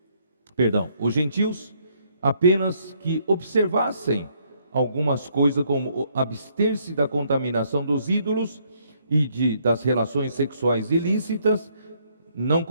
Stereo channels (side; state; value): both; inverted; correlation -0.69